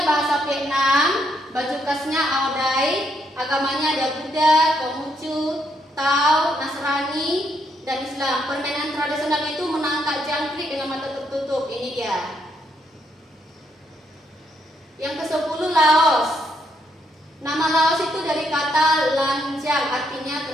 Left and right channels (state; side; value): normal; both; correlation 0.76